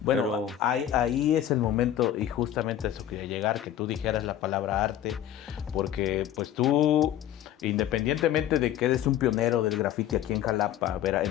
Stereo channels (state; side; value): quieter; right; 11.4 dB